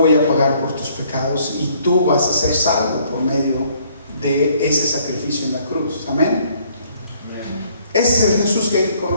a pagar por tus pecados y tú vas a ser salvo por medio de ese sacrificio en la cruz. Amén. Ese es el Jesús que hay que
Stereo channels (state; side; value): inverted; both; correlation -0.63